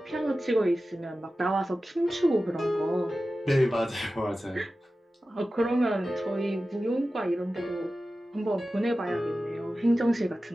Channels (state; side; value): normal; both; correlation 0.94